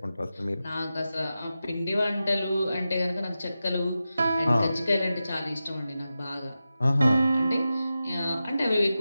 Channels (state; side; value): inverted; both; correlation -0.92